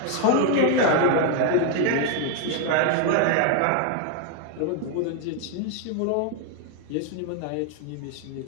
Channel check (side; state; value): both; different; correlation 0.01